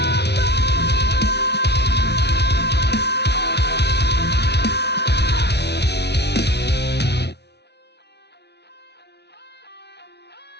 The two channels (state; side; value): late; right; 0.49 ms